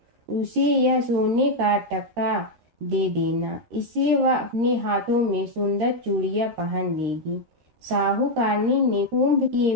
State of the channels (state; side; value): late; left; 13 ms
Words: उसे यह सोने का टक्का दे देना, इससे वह अपने हाथों में सुंदर चूड़ियां पहन लेगी। साहूकारनी ने कुंभ के